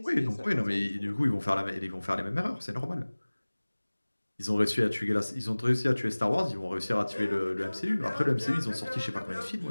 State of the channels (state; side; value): inverted; both; correlation -1.00